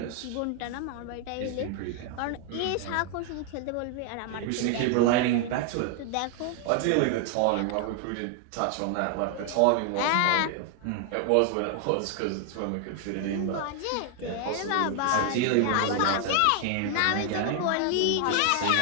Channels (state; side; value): different; both; correlation 0.00